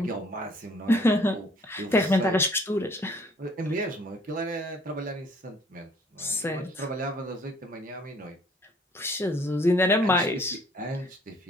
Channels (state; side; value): normal; both; correlation 0.59